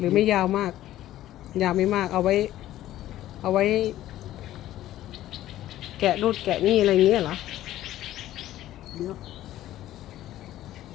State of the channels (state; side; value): quieter; right; 13.8 dB